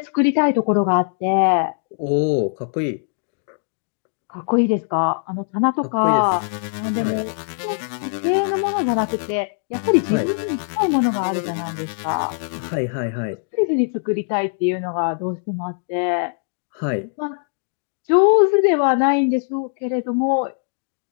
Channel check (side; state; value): right; silent; digital silence